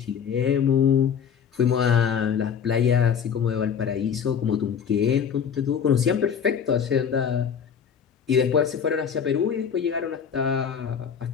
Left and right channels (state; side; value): quieter; right; 7.5 dB